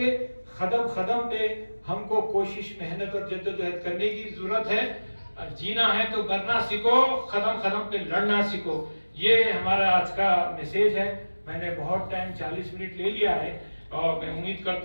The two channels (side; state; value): both; inverted; correlation -1.00